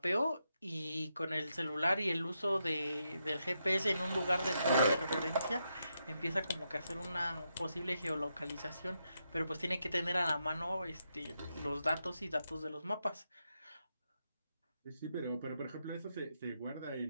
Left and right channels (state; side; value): inverted; both; correlation -0.83